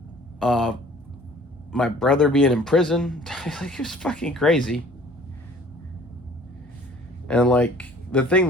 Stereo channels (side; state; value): both; normal; correlation 0.52